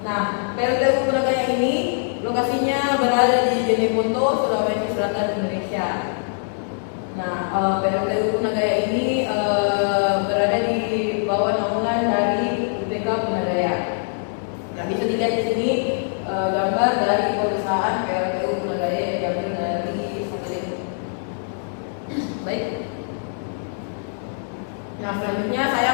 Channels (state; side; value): silent; right; digital silence